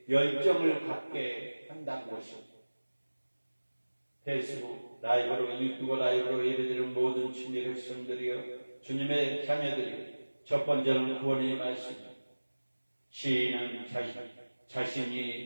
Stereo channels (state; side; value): inverted; both; correlation -1.00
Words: 열정을 갖게 한다는 것입니다. 페이스북 라이브로 유튜브 라이브로 예배드리는 모든 주님의 백성들이여, 주님의 자녀들이여, 첫 번째는 구원의 말씀입니다. 시인은